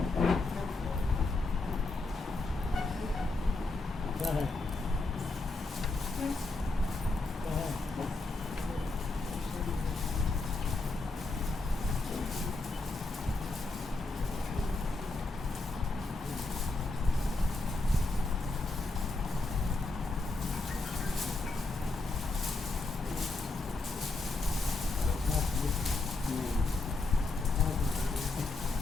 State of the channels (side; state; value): right; quieter; 3.3 dB